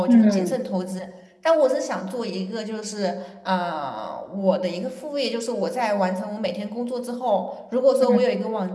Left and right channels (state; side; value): identical; both; correlation 1.00